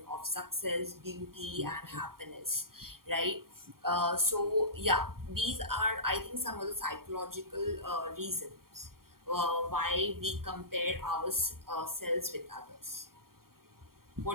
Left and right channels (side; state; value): left; late; 0.93 ms